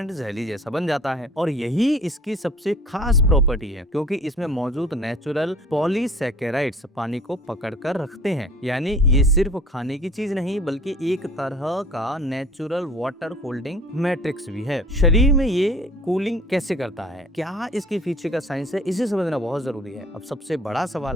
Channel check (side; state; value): both; normal; correlation 0.49